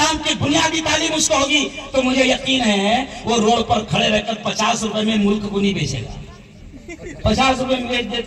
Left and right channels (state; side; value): identical; both; correlation 1.00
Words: की बुनियादी तालीम उसको होगी, तो मुझे यकीन है वो रोड पर खड़े रहकर 50 रुपए में मुल्क को नहीं बेचेगा। 50 रुपए में बेच